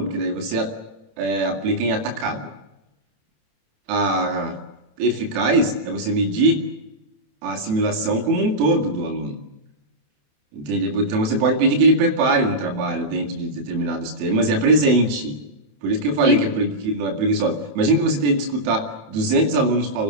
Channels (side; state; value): left; late; 27 ms